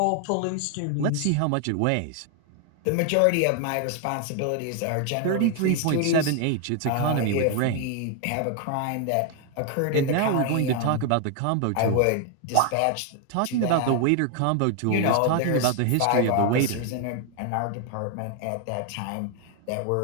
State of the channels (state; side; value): different; both; correlation 0.01